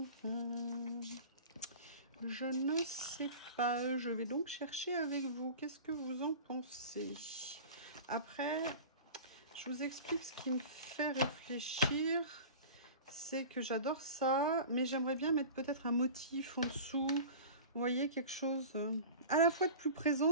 Je ne sais pas. Je vais donc chercher avec vous. Qu'est-ce que vous en pensez? Après, je vous explique ce qui me fait réfléchir. C'est que j'adore ça, mais j'aimerais bien mettre peut-être un motif en dessous. Vous voyez, quelque chose à la fois de plus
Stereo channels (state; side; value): inverted; both; correlation -0.36